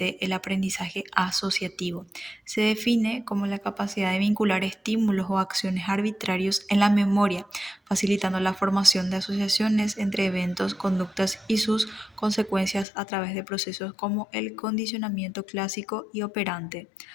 el aprendizaje asociativo. Se define como la capacidad de vincular estímulos o acciones arbitrarios en la memoria, facilitando la formación de asociaciones entre eventos, conductas y sus consecuencias a través de procesos como el condicionamiento clásico y operante.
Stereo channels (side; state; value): right; drops out; at 12.9 s